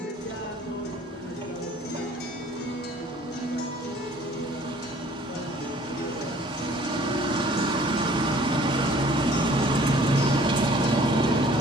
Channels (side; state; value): both; normal; correlation 0.54